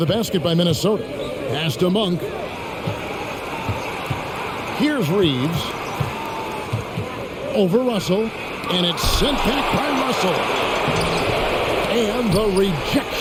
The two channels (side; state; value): both; identical; correlation 1.00